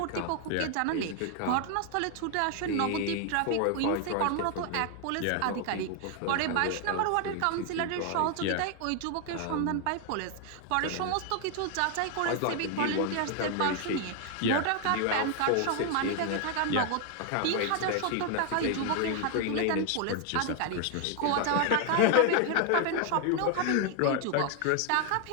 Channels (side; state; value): both; different; correlation 0.00